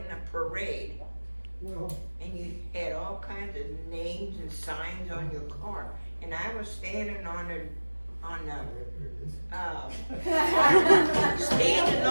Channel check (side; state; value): both; inverted; correlation -1.00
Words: a parade, Well, and you had all kinds of names and signs on your car, and I was standing on there it is. standing